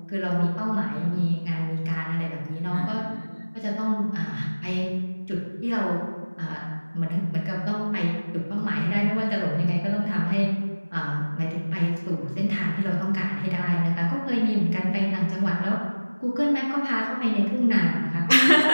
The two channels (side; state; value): both; inverted; correlation -1.00